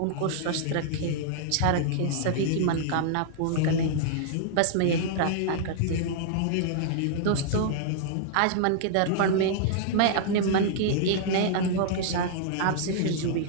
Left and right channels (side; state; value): both; different; correlation -0.01